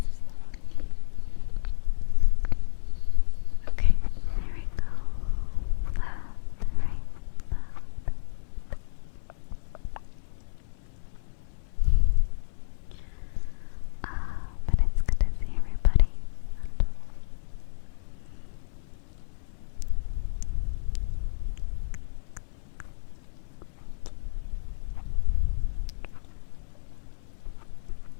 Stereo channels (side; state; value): right; silent; 58 dB below the other